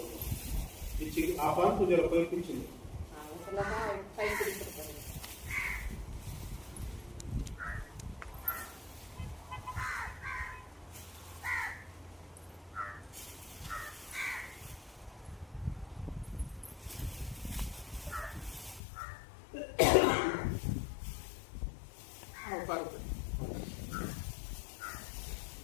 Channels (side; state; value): right; drops out; at 18.8 s